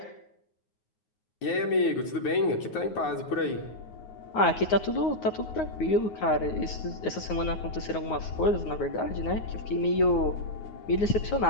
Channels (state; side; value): late; right; 9.5 ms